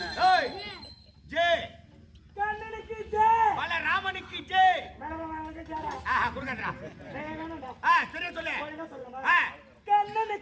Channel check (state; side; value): identical; both; correlation 1.00